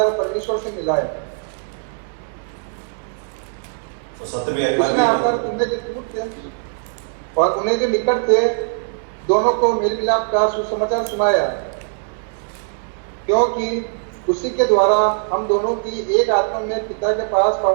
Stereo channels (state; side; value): silent; left; digital silence